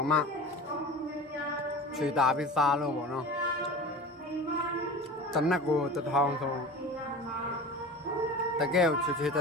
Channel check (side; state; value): both; normal; correlation 0.35